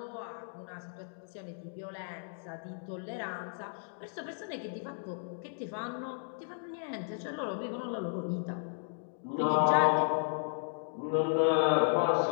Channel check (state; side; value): silent; right; digital silence